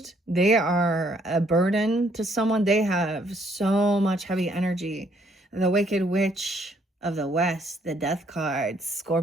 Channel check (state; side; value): normal; both; correlation 0.67